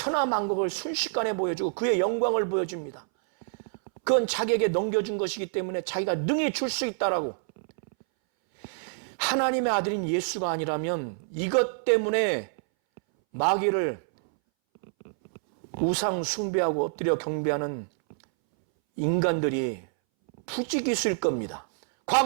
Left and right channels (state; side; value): silent; left; 60 dB below the other